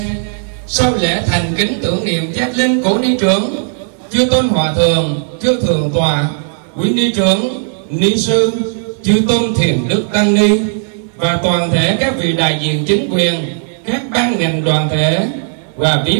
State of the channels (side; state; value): left; silent; digital silence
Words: sau lễ thành kính tưởng niệm giác linh cố ni trưởng, chư tôn hòa thượng, chư thượng tọa, quý ni trưởng, ni sư, chư tôn thiền đức tăng ni và toàn thể các vị đại diện chính quyền, các ban ngành đoàn thể và